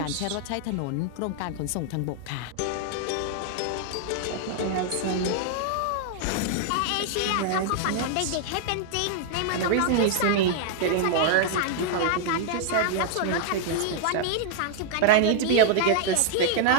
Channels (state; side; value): different; both; correlation 0.00